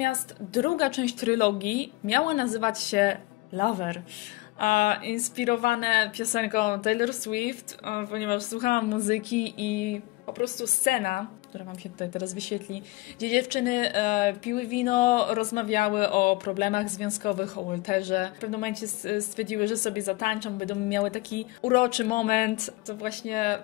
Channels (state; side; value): quieter; right; 21.4 dB